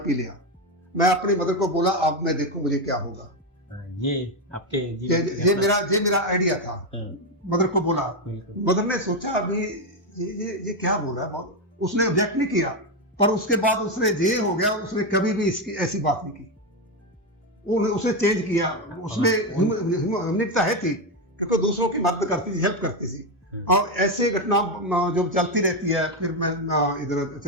पी लिया। मैं अपनी मदर को बोला, अब मैं देखो मुझे क्या होगा। ये आपके ये मेरा आइडिया था। मदर को बोला, मदर ने सोचा अभी ये क्या बोल रहा है, उसने ऑब्जेक्ट नहीं किया। पर उसके बाद उसने ये हो गया, उसने कभी भी इसकी ऐसी बात नहीं की। उसने चेंज किया, उसमें ह्यूमैनिटी है थी, क्योंकि दूसरों की मदद करती थी, हेल्प करती थी। और ऐसे घटना जो चलती रहती है। फिर मैं इधर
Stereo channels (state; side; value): normal; both; correlation 0.09